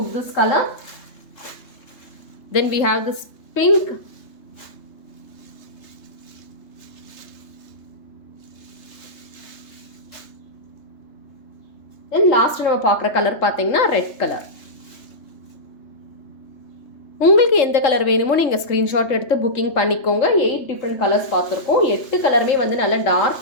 this color. Then we have this pink. Then last நம்ம பார்க்குற கலர் பார்த்தீங்கன்னா ரெட் கலர். உங்களுக்கு எந்த கலர் வேணுமோ நீங்கள் ஸ்க்ரீன்ஷாட் எடுத்து புக்கிங் பண்ணிக்கோங்க. 8 டிஃப்ரெண்ட் கலர்ஸ் பார்த்துருக்கோம். 8 கலருமே வந்து நல்ல டார்க்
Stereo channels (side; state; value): right; late; 3.3 ms